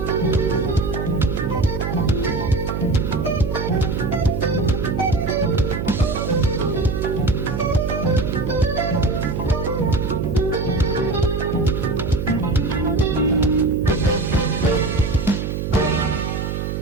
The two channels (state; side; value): noise; right; hum, 3 dB below the sound